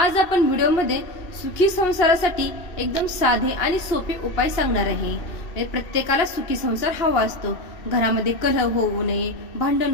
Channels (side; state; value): right; late; 2.7 ms